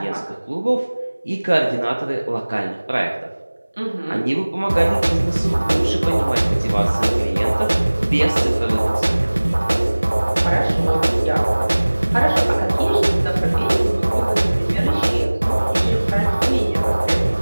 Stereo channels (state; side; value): inverted; both; correlation -1.00